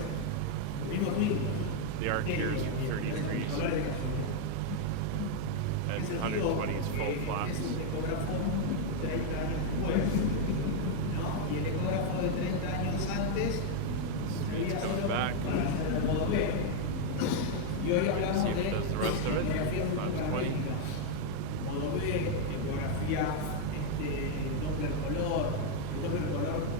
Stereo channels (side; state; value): both; different; correlation 0.01